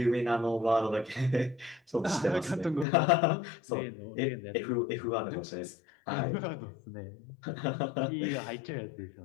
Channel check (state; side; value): drops out; right; at 2.9 s